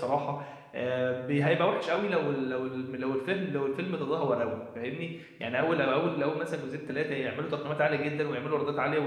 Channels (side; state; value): both; identical; correlation 1.00